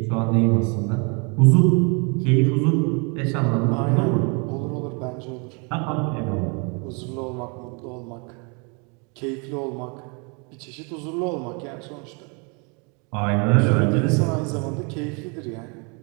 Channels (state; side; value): quieter; left; 33.7 dB